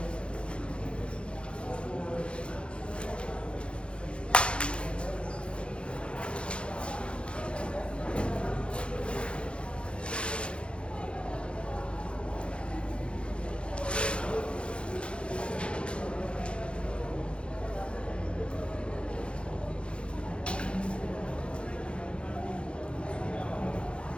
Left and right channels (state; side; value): late; right; 0.057 ms